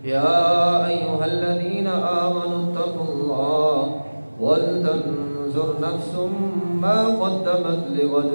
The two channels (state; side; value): inverted; both; correlation -1.00